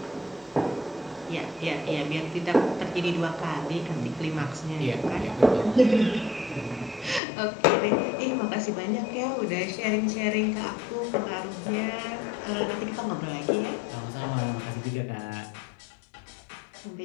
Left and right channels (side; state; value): right; drops out; at 7.2 s